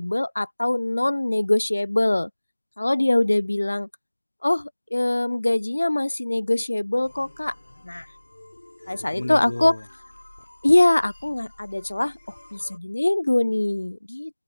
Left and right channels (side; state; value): both; inverted; correlation -1.00